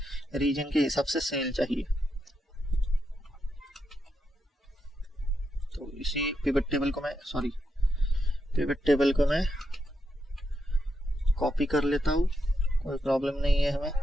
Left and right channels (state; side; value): normal; both; correlation 0.84